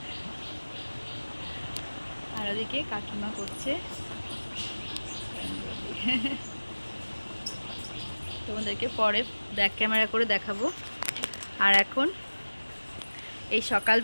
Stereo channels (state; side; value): inverted; both; correlation -1.00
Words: আর ওদিকে কাকিমা করছে, তোমাদেরকে পরে ব্যাক ক্যামেরা করে দেখাবো। আর এখন এই